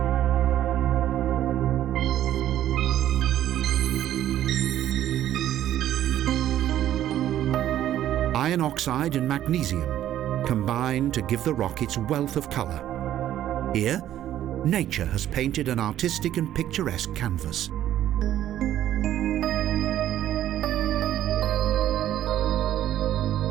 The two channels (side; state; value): left; quieter; 12.1 dB